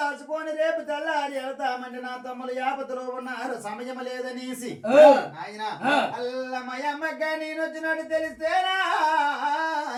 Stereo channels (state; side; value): identical; both; correlation 1.00